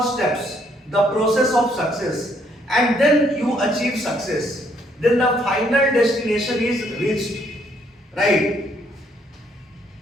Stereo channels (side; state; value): both; normal; correlation 0.69